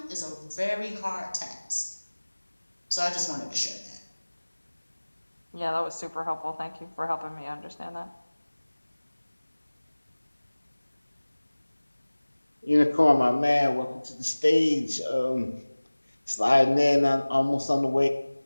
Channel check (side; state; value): both; inverted; correlation -1.00